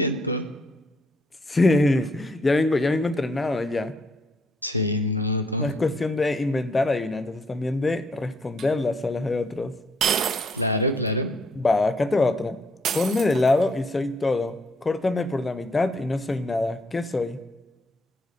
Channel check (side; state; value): both; normal; correlation 0.70